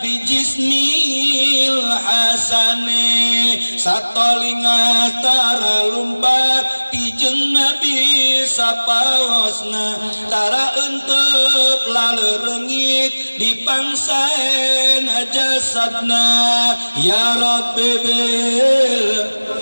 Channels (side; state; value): both; inverted; correlation -1.00